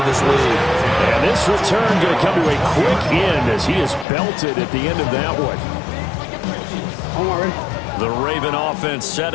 this lead. And this return going to come to a quick end as he is belted at the end of that one. The Raven offense set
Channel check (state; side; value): drops out; right; at 4.0 s